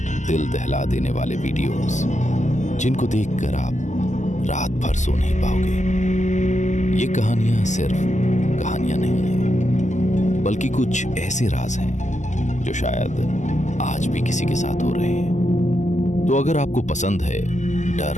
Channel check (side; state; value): right; late; 0.34 ms